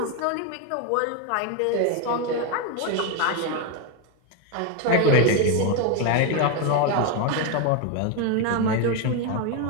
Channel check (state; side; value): different; both; correlation 0.02